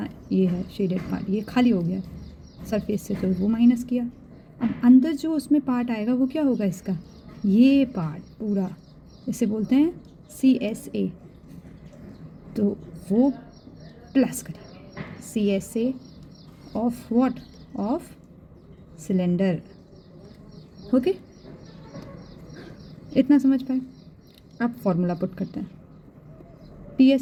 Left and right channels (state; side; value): identical; both; correlation 1.00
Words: ये है शेडेड पार्ट, ये खाली हो गया सरफेस से, तो वो माइनस किया. अब अंदर जो उसमें पार्ट आएगा वो क्या होगा, इसका ये पार्ट पूरा, इसे बोलते हैं CSA. तो वो प्लस करेंगे CSA of what, of cylinder. Okay, इतना समझ पाए. अब फॉर्मूला पुट करते हैं.